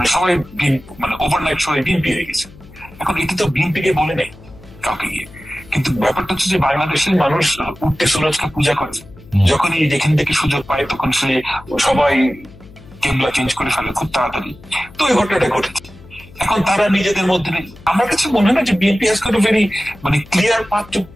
সবাই মানে ওভারনাইট সবাই বিএনপি হয়ে গেছে। এখন এটি তো বিএনপি কে বলে নেই কাউকে গিয়ে, কিন্তু ব্যাপারটা হচ্ছে যে বাংলাদেশের মানুষ উঠতে সুরজকে পূজা করে, যখনই যেখান থেকে সুযোগ পায় তখন সে সবাই কেবলা চেঞ্জ করে ফেলে খুব তাড়াতাড়ি। তো এই ঘটনাটা ঘটেছে। এখন তারা নিজেদের মধ্যে, আমার কাছে মনে হয় না যে BNP has got a very clear path to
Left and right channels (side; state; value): left; noise; hum, 21 dB below the sound